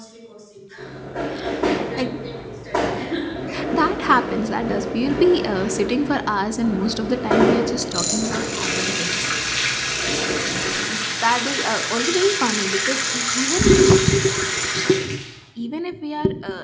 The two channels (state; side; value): identical; both; correlation 1.00